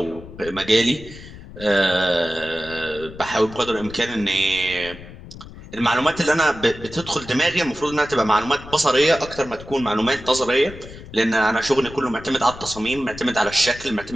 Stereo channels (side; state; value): left; noise; rumble, 16 dB below the sound